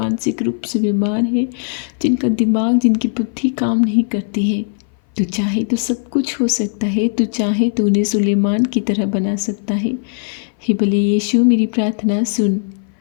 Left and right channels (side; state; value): right; silent; 59 dB below the other